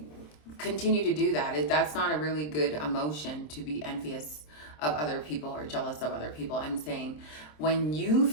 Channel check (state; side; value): late; right; 26 ms